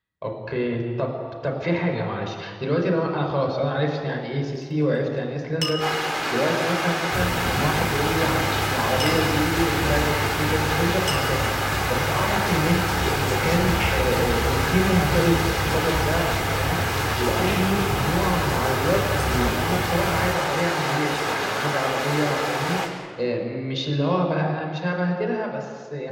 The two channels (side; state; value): both; identical; correlation 1.00